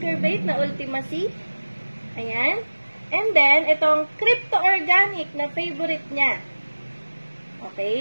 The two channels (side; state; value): both; inverted; correlation -1.00